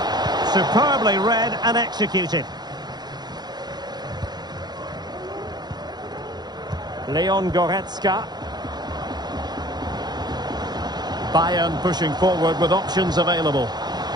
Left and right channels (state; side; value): late; left; 0.20 ms